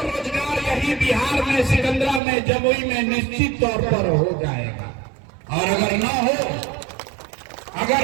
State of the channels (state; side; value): drops out; left; at 2.2 s